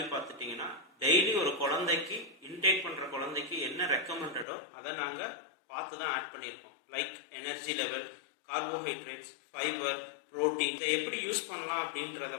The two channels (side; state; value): right; drops out; at 4.5 s